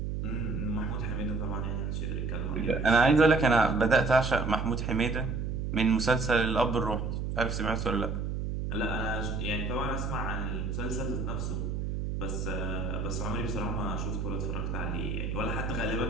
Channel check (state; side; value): noise; right; hum, 2 dB below the sound